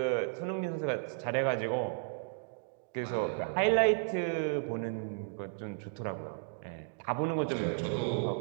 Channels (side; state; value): left; silent; digital silence